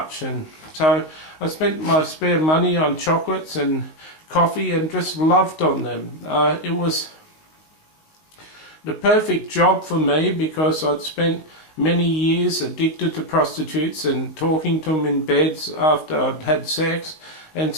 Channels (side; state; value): right; late; 19 ms